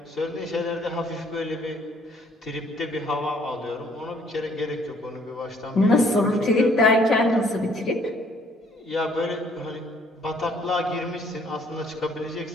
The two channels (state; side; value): normal; both; correlation 0.62